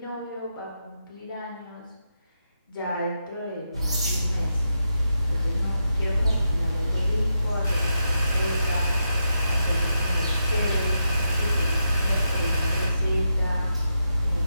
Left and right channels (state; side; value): inverted; both; correlation -0.85